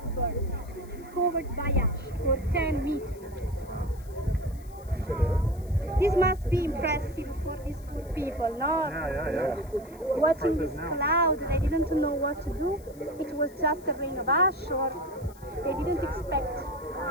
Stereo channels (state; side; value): noise; left; hiss, 25 dB below the sound